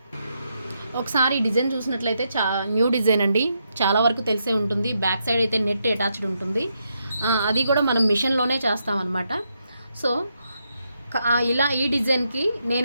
ఒకసారి ఈ డిజైన్ చూసినట్లయితే న్యూ డిజైన్ అండి, చాలా వరకు తెలిసే ఉంటుంది. బ్యాక్ సైడ్ అయితే నెట్ అటాచ్డ్ ఉంటుంది, అది కూడా మనం మిషన్లోనే చేస్తామన్నమాట. సో ఇలా ఈ డిజైన్కి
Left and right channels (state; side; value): inverted; both; correlation -0.81